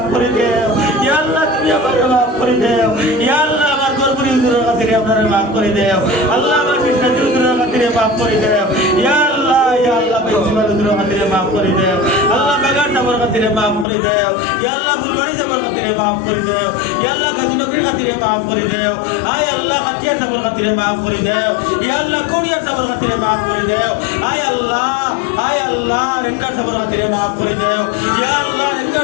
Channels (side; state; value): right; drops out; at 13.9 s